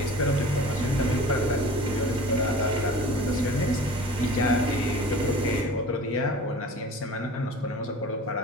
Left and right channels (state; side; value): normal; both; correlation 0.41